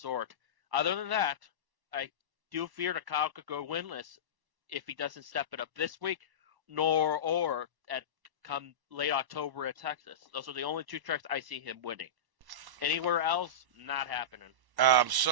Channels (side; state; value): left; late; 1.1 ms